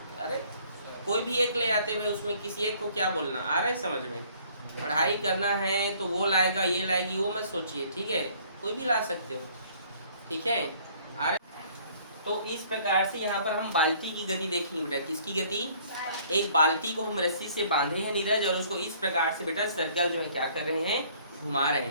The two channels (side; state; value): both; inverted; correlation -0.58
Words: अरे कोई भी एक ले आते हैं, उसमें किसी एक को क्या बोलना आ रहा है समझ में। पढ़ाई करना है तो वो लाएगा, ये लाएगी, वो मत सोचिए, ठीक है। कोई भी ला सकते हो, ठीक है। आ रहे? तो इस प्रकार से यहाँ पर हम बाल्टी की गति देखेंगे बेटा। किसकी गति? एक बाल्टी को हम रस्सी से बांधे हैं नीरज, और उसको इस प्रकार से बेटा सर्कल जो है क्या कर रहे हैं, घुमा रहे